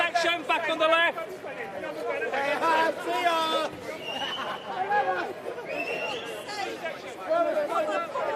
back on the left. See ya!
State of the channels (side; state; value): both; identical; correlation 1.00